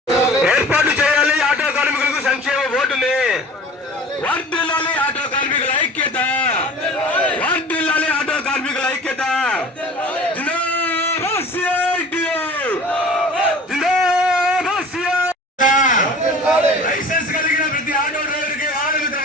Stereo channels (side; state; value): both; normal; correlation 0.42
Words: ఏర్పాటు చేయాలి. ఆటో కార్మికులకు సంక్షేమ బోర్డుని వర్ధిల్లాలి. ఆటో కార్మికుల ఐక్యత వర్ధిల్లాలి. ఆటో కార్మికుల ఐక్యత లైసెన్స్ కలిగిన ప్రతి ఆటో డ్రైవర్కి వాహన మిత్ర